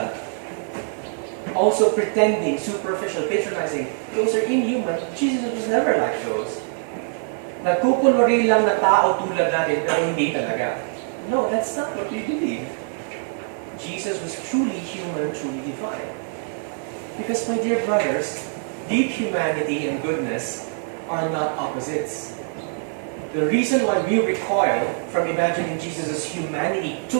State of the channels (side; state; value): left; silent; 62 dB below the other